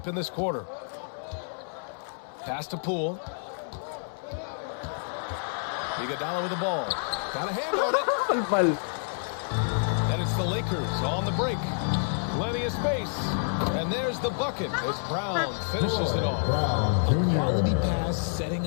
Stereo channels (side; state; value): right; silent; 59 dB below the other